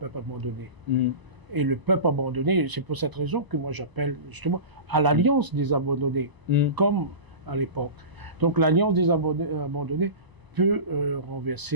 abandonné. Et le peuple abandonné, c'est pour cette raison que moi j'appelle justement à l'alliance des abandonnés, comme à l'époque. Donc l'alliance des abandonnés peut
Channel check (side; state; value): left; late; 1.0 ms